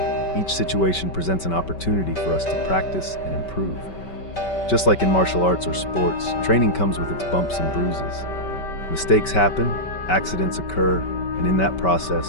each situation presents an opportunity for us to practice and improve. Just like in martial arts or sports, training comes with its bumps and bruises. Mistakes happen, accidents occur, and in that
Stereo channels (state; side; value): late; right; 5.2 ms